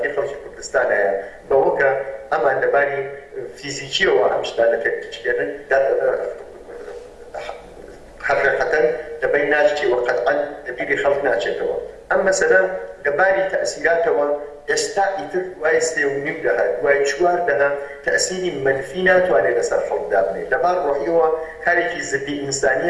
خەڵکی کوردستانەیە بەوە کە ئەمان لەباری فیزیکیەوە ئەم شتانە تێکچێنن حقیقەتەن لەبەر ناچێتەوە قەتعەن لەبیری خەڵک ناچێتەوە ئەم مەسەلە لەباری تەئسیراتەوە ئێستا ئیتر دوای 3.5 دەها دوای 4 دەها تەئسیری منفی ناتوانێت لەسەر خەڵکدا بنێت لەبار ڕۆحیەوە کارێکی زدی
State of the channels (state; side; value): identical; both; correlation 1.00